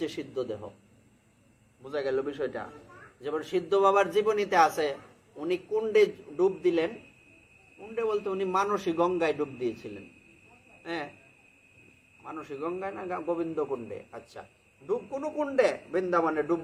সিদ্ধ দেহ। বোঝা গেল বিষয়টা? যেমন সিদ্ধ বাবার জীবনীতে আছে, উনি কুণ্ডে ডুব দিলেন। কুণ্ডে বলতে উনি মানসী গঙ্গায় ডুব দিয়েছিলেন। হ্যাঁ, মানসী গঙ্গায় না গোবিন্দ কুণ্ডে, আচ্ছা ডুব কোন কুণ্ডে বৃন্দাবনে ডুব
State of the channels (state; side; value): identical; both; correlation 1.00